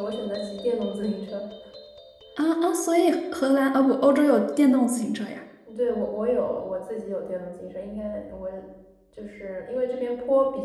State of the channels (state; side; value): identical; both; correlation 1.00